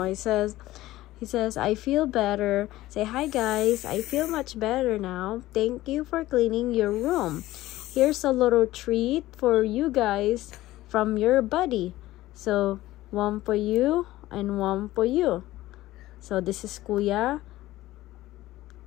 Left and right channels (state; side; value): quieter; right; 16.4 dB